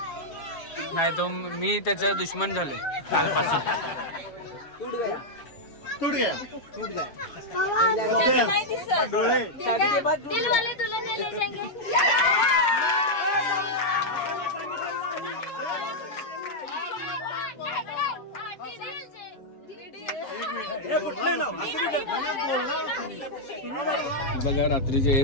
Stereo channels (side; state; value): right; late; 7.3 ms